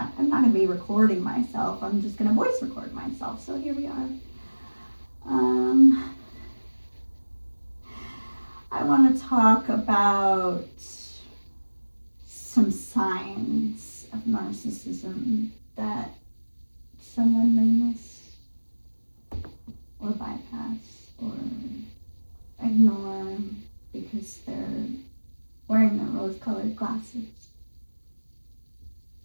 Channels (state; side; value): inverted; both; correlation -1.00